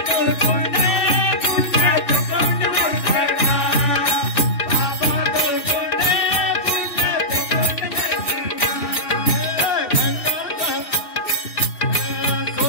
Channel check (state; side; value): late; right; 2.7 ms